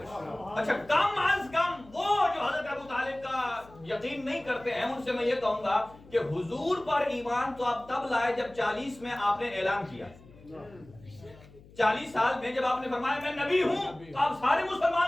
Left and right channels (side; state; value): left; noise; hum, 23 dB below the sound